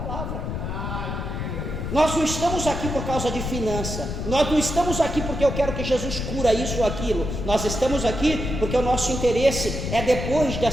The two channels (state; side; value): noise; left; rumble, 4 dB below the sound